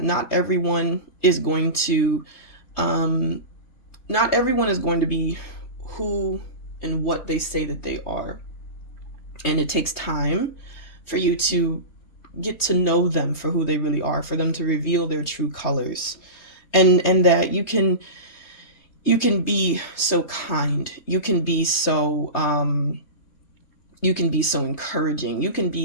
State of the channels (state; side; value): late; right; 3.2 ms